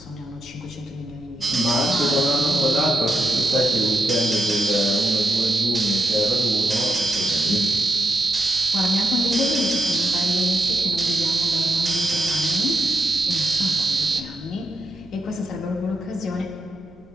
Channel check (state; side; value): noise; right; rumble, 28 dB below the sound